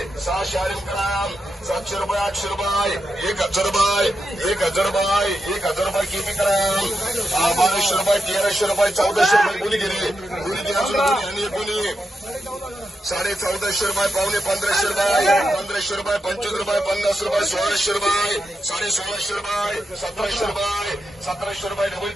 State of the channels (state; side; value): normal; both; correlation 0.86